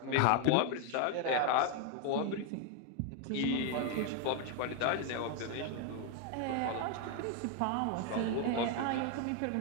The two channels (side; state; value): both; different; correlation 0.01